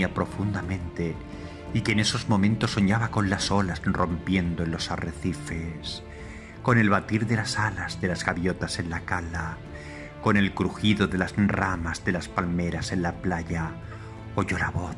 profundamente y que en esos momentos soñaba con las olas rompiendo en los arrecifes, con el batir de las alas de las gaviotas en la cala, con el crujido de las ramas de las palmeras en la playa, oyó la voz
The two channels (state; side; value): identical; both; correlation 1.00